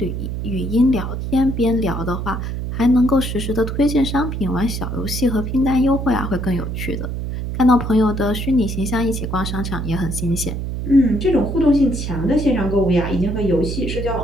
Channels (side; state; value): right; noise; hum, 4 dB below the sound